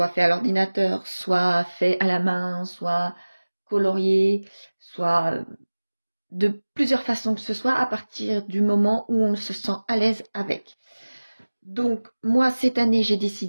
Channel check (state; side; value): inverted; both; correlation -1.00